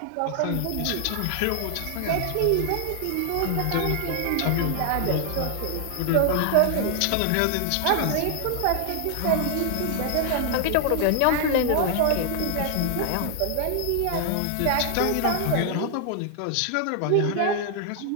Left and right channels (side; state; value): both; different; correlation 0.00